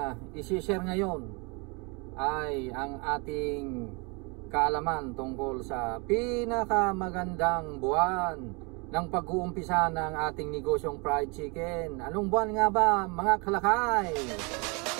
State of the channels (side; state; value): left; quieter; 30.7 dB